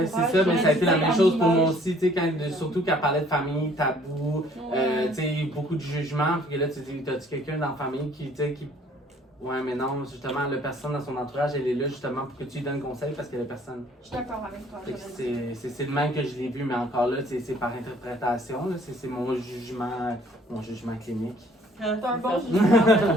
Ouais, c'est ça, mais j'aurais ça a dit été la même amimage. chose pour moi aussi, tu sais, surtout quand elle parlait de famille, tabou, Ouais. tu sais, beaucoup de jugements, puis que là, tu te dis, t'as-tu quelqu'un dans la famille qui, tu sais, qui... Ouais, mais non, justement, la personne dans son entourage, elle est là justement pour que tu lui donnes conseil parce qu'elle est personne. Je suis d'accord avec toi. Fait que j'aurais dit. c'est le même que je l'ai vu, mais encore là, c'est par interprétation, là, c'est mon jugement clinique. Ah, C'est un c'est bon ça.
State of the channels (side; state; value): both; normal; correlation 0.58